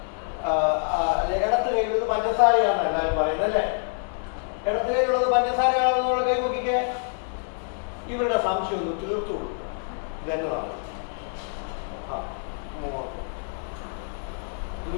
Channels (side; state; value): right; silent; digital silence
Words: ഇടത്ത് കയ്യിലുള്ളത് പഞ്ചസാരയാണെന്ന് എല്ലാവരും പറയുന്നത് അല്ലേ? ഇടത്ത് കയ്യിലുള്ളത് പഞ്ചസാരയാണോ എന്നുള്ള കൈ നോക്കിക്കേ. ഇവരുടെ സംശയം ഒന്ന് തീർത്തു കൊടുക്കും. ഇതെന്നതാണ്